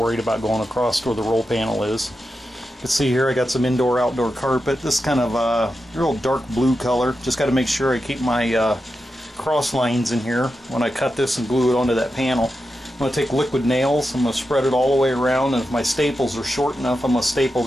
about going across to where the roll panel is. You can see here I got some indoor-outdoor carpet. This kind of real dark blue color. Just got to make sure I keep my cross lines in here when I cut this and glue it onto that panel. I'm going to take liquid nails. I'm going to spread it all the way around, and if my staples are short enough, I'm going to staple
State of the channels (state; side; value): normal; both; correlation 0.89